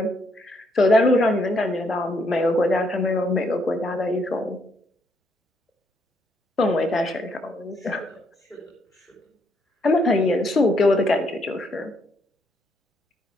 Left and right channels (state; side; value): normal; both; correlation 0.73